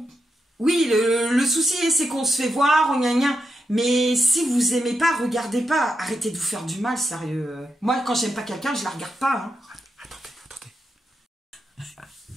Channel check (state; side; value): normal; both; correlation 0.85